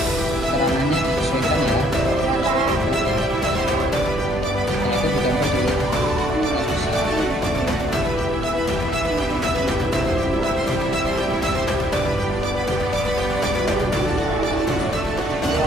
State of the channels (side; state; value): both; normal; correlation 0.67